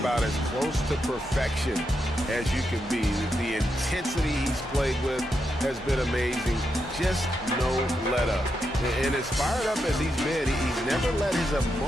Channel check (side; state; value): both; normal; correlation 0.84